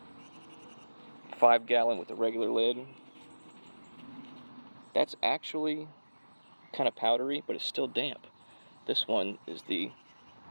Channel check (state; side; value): inverted; both; correlation -1.00